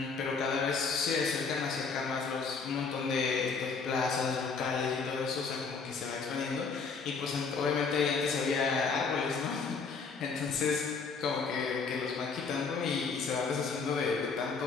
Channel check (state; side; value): quieter; right; 5.0 dB